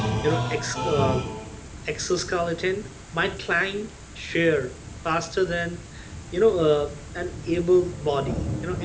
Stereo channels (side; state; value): both; identical; correlation 1.00